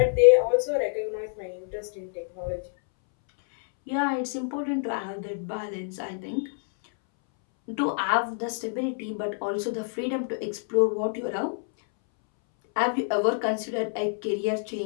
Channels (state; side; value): silent; right; 60 dB below the other